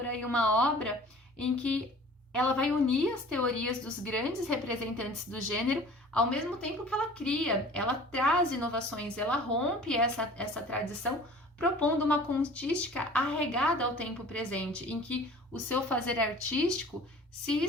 aí uma obra em que ela vai unir as teorias dos grandes representantes do gênero, ao mesmo tempo que ela cria, ela traz inovações, ela rompe essa tradição, propondo uma contística arraigada ao tempo presente, em que o seu fazer artístico se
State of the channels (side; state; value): both; normal; correlation 0.46